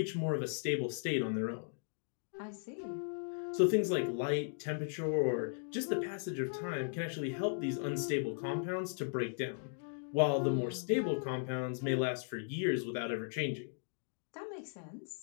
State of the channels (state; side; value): silent; right; digital silence